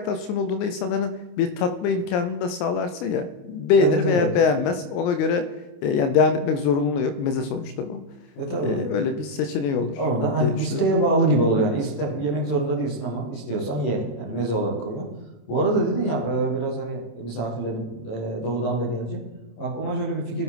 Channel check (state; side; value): late; right; 28 ms